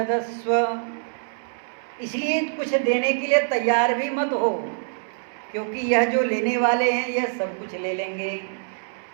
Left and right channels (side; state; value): left; silent; 60 dB below the other